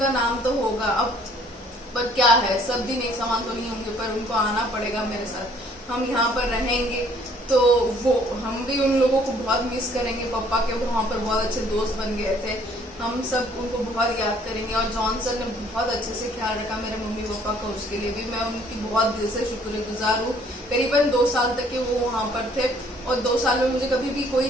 नाम तो होगा। अब पर क्या है, सब दिन एक समान तो नहीं होंगे, पर उनको आना पड़ेगा मेरे साथ। हम यहाँ पर रहेंगे तो वो हम भी उन लोगों को बहुत मिस करेंगे। पापा के वहाँ पर बहुत अच्छे दोस्त बन गए थे, हम सब उनको बहुत याद करेंगे। और जॉनसन ने बहुत अच्छे से ख्याल रखा मेरे मम्मी पापा का, उसके लिए भी मैं उनकी बहुत दिल से शुक्रगुजार हूँ। करीबन 2 साल तक के वो वहाँ पर थे, और 2 साल में मुझे कभी भी कोई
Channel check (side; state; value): both; normal; correlation 0.60